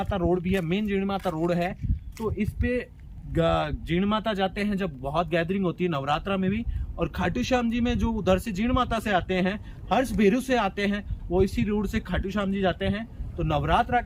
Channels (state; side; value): identical; both; correlation 1.00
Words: रोड भी है, मेन जीणमाता रोड है, तो इस पे जीणमाता जाते हैं जब बहुत गैदरिंग होती है नवरात्रा में भी। और खाटू श्याम जी में जो उधर से जीणमाता से आते हैं, हर्ष भेरू से आते हैं, वो इसी रोड से खाटू श्याम जी जाते हैं। तो नवरात्रा